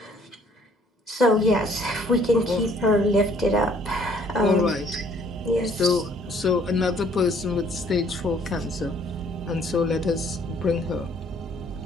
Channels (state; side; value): normal; both; correlation 0.60